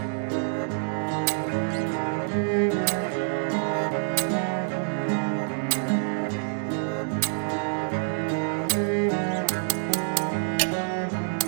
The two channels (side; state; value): left; silent; digital silence